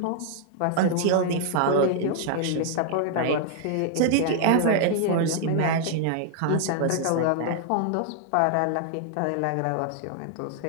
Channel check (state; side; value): different; both; correlation 0.00